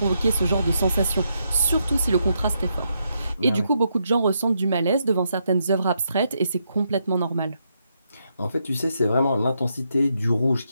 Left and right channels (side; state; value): both; inverted; correlation -0.80